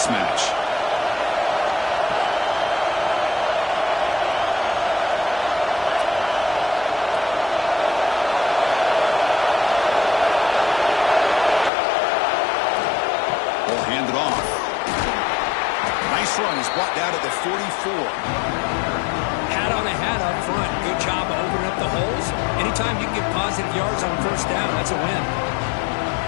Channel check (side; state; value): right; drops out; at 11.7 s